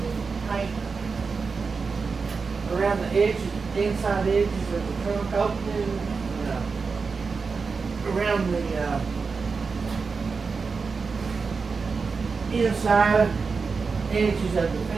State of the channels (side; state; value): left; quieter; 4.9 dB